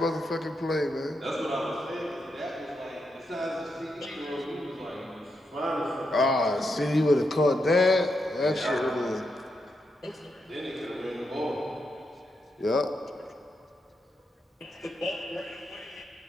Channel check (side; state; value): both; normal; correlation 0.83